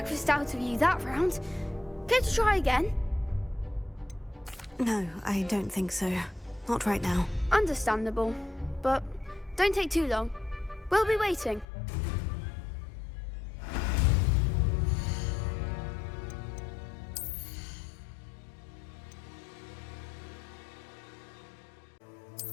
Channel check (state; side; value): drops out; right; at 11.7 s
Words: out of you that round. Care to try again? No, I don't think so. Not right now. Understandable. But don't take too long. We'll be waiting.